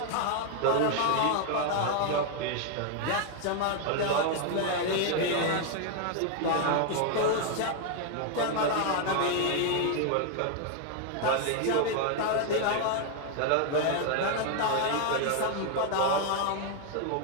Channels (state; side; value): different; both; correlation 0.00